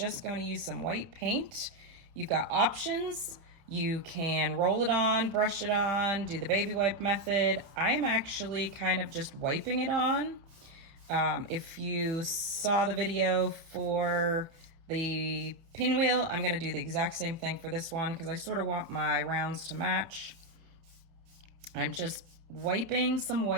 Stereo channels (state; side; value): late; left; 30 ms